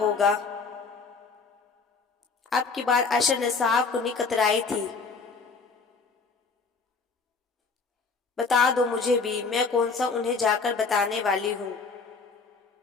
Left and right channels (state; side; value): quieter; right; 4.5 dB